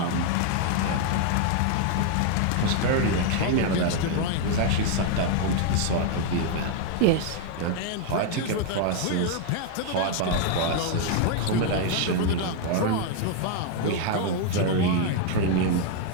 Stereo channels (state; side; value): different; both; correlation 0.00